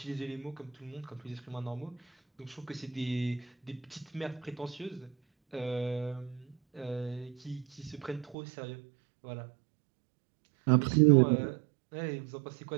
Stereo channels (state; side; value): drops out; left; at 8.3 s